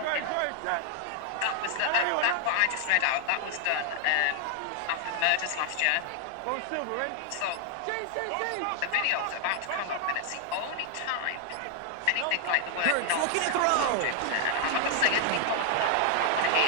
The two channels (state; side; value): different; both; correlation 0.00